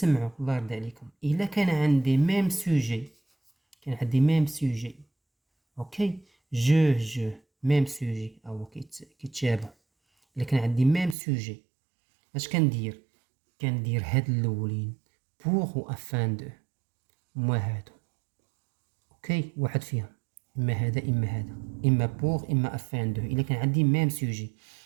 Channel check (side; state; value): left; drops out; at 11.2 s